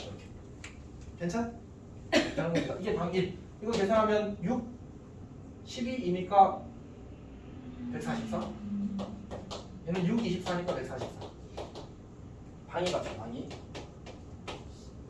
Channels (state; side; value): identical; both; correlation 1.00